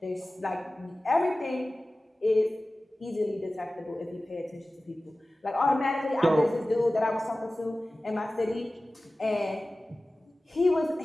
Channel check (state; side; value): normal; both; correlation 0.97